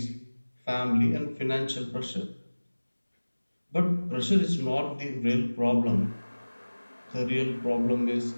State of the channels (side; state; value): both; inverted; correlation -1.00